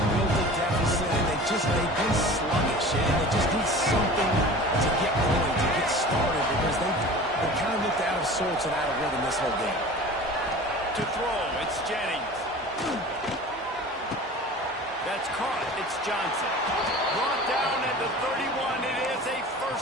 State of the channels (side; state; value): both; normal; correlation 0.39